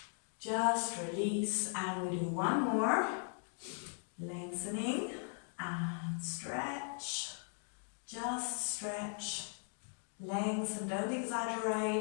just release, and we do one more, lengthening and stretch, just stretch, lengthen, don't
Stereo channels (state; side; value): silent; right; 52 dB below the other